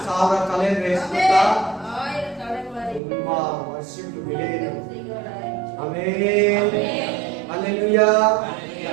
1000 ತಲೆ ಅಂದ್ರೆ ಎಷ್ಟು ಗೊತ್ತಾ? ತುಂಬಾ ವರ್ಷಕ್ಕೆ ಬೆಲೆ ಇದೆ. ಆಮೆನ್. ಹಲ್ಲೆಲೂಯಾ.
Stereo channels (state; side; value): drops out; left; at 3.0 s